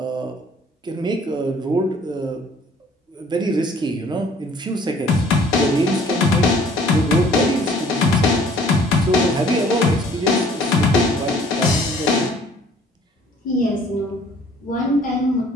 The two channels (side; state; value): both; normal; correlation 0.56